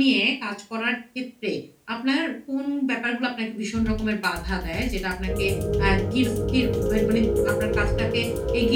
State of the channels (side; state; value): both; identical; correlation 1.00